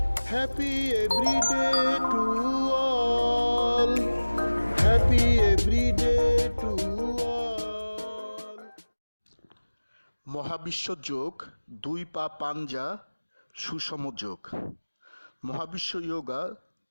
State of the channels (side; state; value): both; inverted; correlation -1.00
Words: Happy every day to all. Happy every day to all. মহাবিশ্ব যোগ, দুই পা পাঞ্জা, সুষম যোগ। মহাবিশ্ব যোগা,